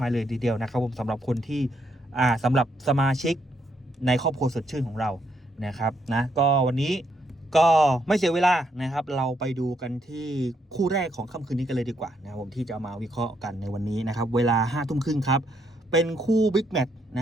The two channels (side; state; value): both; normal; correlation 0.75